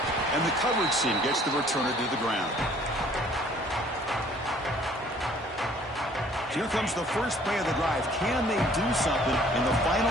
And the coverage team gets the returner to the ground. Here comes the first play of the drive. Can they do something in the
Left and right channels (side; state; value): both; normal; correlation 0.57